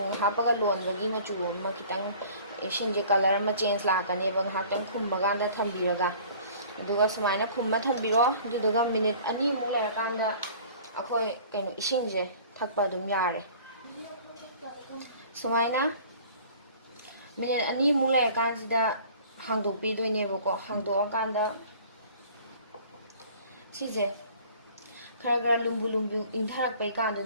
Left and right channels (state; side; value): inverted; both; correlation -0.49